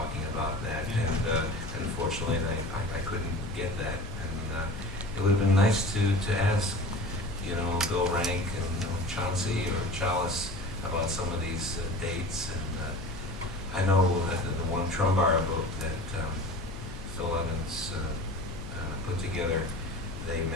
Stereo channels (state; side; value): noise; left; hum, 12 dB below the sound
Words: about that, and unfortunately I couldn't get that, and it would have been nice to ask Bill Rank and Chauncey or Chalice about some of these dates, and I know that the one Trumbara book that Phil Evans put together, they